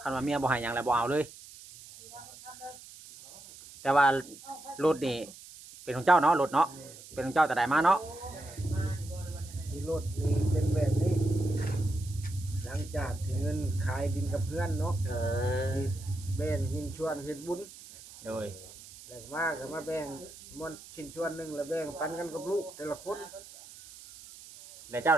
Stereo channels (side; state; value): right; noise; hiss, 17 dB below the sound